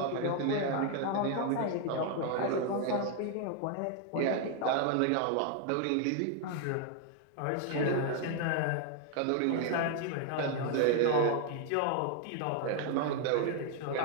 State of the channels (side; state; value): both; different; correlation 0.00